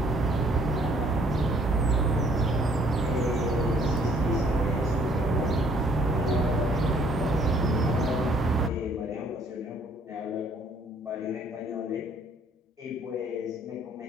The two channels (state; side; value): normal; both; correlation 0.62